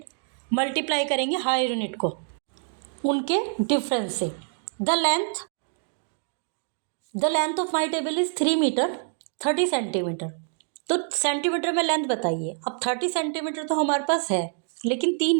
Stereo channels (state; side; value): silent; left; 59 dB below the other